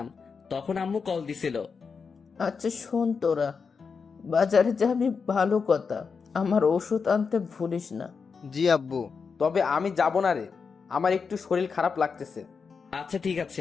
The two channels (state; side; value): quieter; right; 5.5 dB